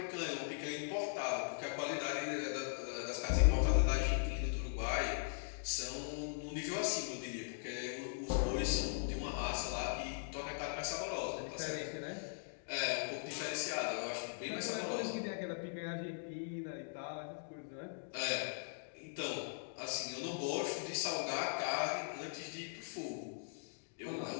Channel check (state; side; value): silent; right; digital silence